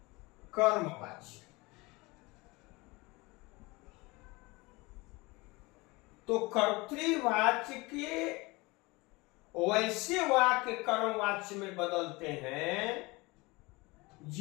कर्मवाच्य। तो कर्तृवाच्य के वैसे वाक्य कर्मवाच्य में बदलते हैं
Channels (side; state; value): right; quieter; 23.9 dB